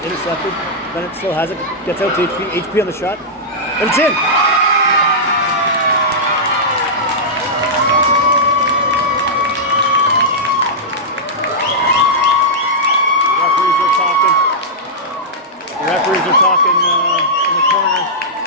Intercepted. Bennett still has it. Gets out to HP. HP on the shot. And it's in! The referees are talking in the corner.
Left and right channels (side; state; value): both; normal; correlation -0.11